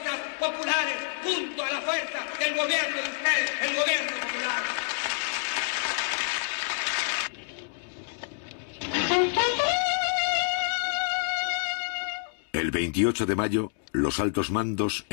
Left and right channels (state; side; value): silent; right; 59 dB below the other